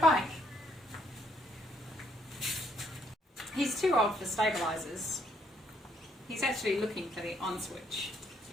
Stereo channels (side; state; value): both; normal; correlation 0.70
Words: bike. He's too old for stabilisers. He's actually looking for the on switch.